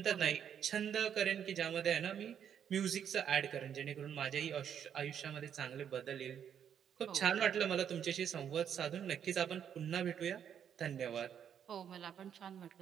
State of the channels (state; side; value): quieter; left; 8.6 dB